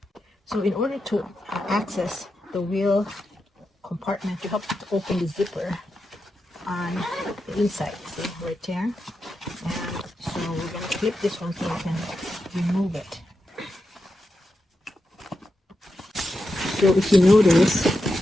So in order to access the wheel compartment, you have to open the zipper on the inside, see, right there. And so we're going to clip this one so you can remove it. So if you notice,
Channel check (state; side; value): normal; both; correlation 0.88